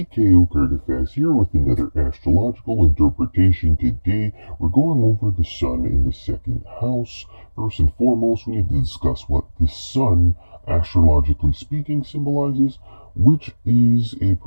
here with another astrological interpretation. Today, we're going over the sun in the second house. First and foremost, we need to discuss what the sun, astrologically speaking, symbolizes, which is a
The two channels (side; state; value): both; inverted; correlation -1.00